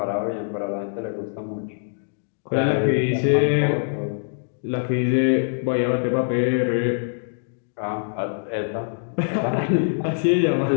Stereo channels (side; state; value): right; silent; digital silence